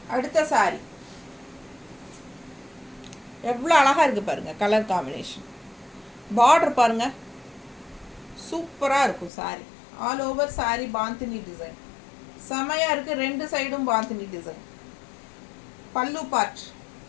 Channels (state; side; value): drops out; right; at 9.3 s